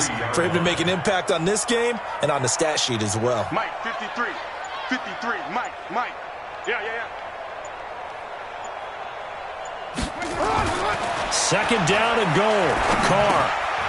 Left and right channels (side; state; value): both; identical; correlation 1.00